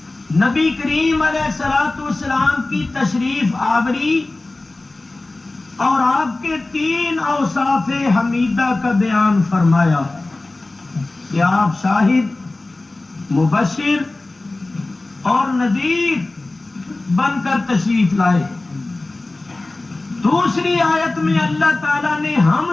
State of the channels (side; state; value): right; quieter; 3.0 dB